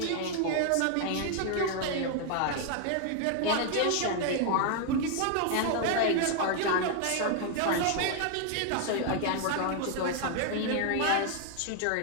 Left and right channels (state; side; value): different; both; correlation 0.00